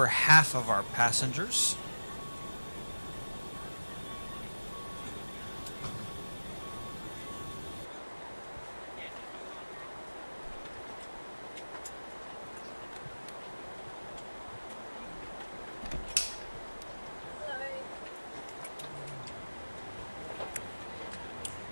half of our passengers.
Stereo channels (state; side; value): inverted; both; correlation -1.00